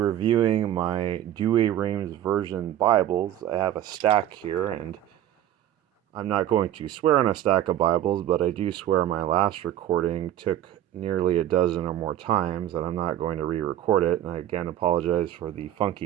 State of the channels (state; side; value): quieter; left; 12.0 dB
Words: my Douay Rheims version Bibles. I have a stack here, and I'm not going to swear on a stack of Bibles, but I do swear my last recording took nearly a dozen or more times, and I'm not going to re-record it. And I again apologize for the